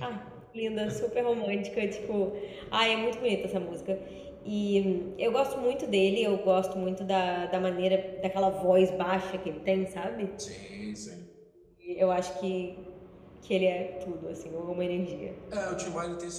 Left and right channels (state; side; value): identical; both; correlation 1.00